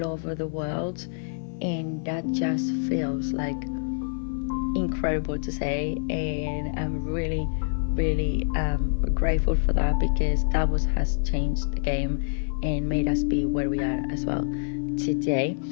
over the world, and that just feels like incredible to say. And I'm really grateful for that, because that has changed the game and made us be where we are as well today.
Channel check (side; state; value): right; silent; 60 dB below the other